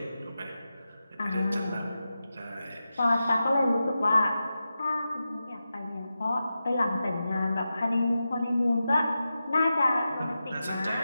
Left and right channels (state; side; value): inverted; both; correlation -0.91